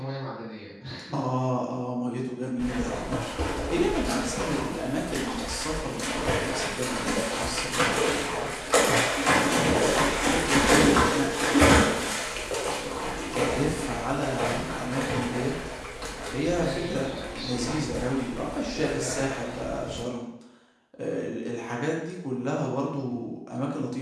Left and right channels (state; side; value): identical; both; correlation 1.00